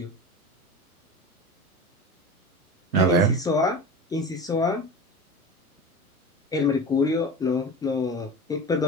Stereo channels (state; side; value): normal; both; correlation 0.31